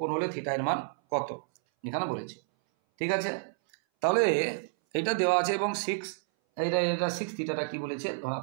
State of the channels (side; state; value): left; silent; 58 dB below the other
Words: কোণ হলে থিটা এর মান কত এখানে বলেছে। ঠিক আছে, তাহলে এটা দেওয়া আছে এবং 6 এটা 6 থিটাটা কি বলেছে,